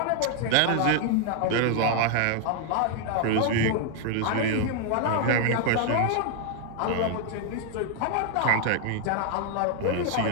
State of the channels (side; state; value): both; different; correlation 0.00